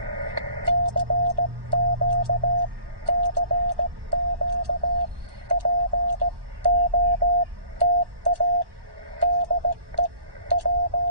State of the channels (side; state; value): left; late; 1.1 ms